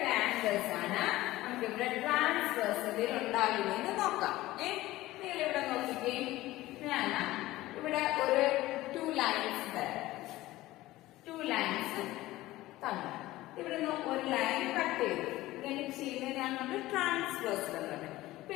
angles ആണ് നമുക്ക് ഇവിടെ ട്രാൻസ്വേഴ്സലിൽ ഉണ്ടാകുന്നതെന്ന് നോക്കാം. നിങ്ങൾ ഇവിടെ നോക്കിക്കേ. ഞാൻ ഇവിടെ ഒരു 2 ലൈൻസ് തരാം. 2 ലൈൻസ് തന്നു. ഇവിടുന്ന് ഒരു ലൈൻ കട്ട് ചെയ്തു. ഇങ്ങനെ ചെയ്യുന്നതിനാണ് നമ്മൾ ട്രാൻസ്വേഴ്സൽ എന്നുള്ളത്. ഇപ്പൊ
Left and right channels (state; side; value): quieter; right; 17.2 dB